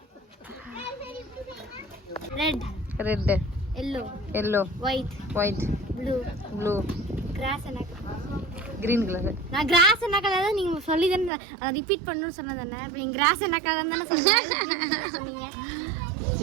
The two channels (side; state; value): left; drops out; at 11.3 s